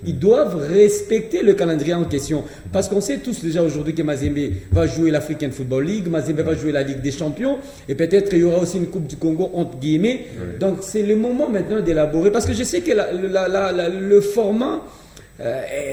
ils doivent respecter le calendrier en question. Parce qu'on sait tous déjà aujourd'hui que Mazembe va jouer l'African Football League, Mazembe va jouer la Ligue des Champions, et peut-être il y aura aussi une Coupe du Congo, entre guillemets. Donc c'est le moment maintenant d'élaborer. Parce que je sais que le format,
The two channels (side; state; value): both; identical; correlation 1.00